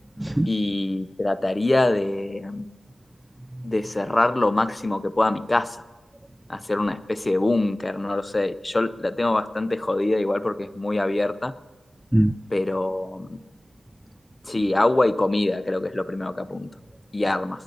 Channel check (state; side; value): normal; both; correlation 0.98